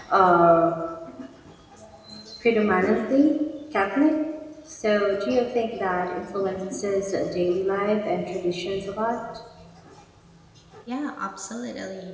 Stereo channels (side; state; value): both; identical; correlation 1.00